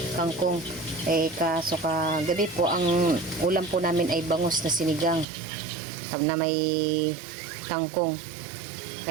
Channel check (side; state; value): left; drops out; at 5.2 s